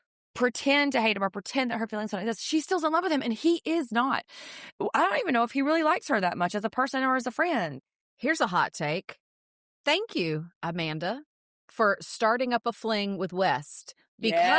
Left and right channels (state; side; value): identical; both; correlation 1.00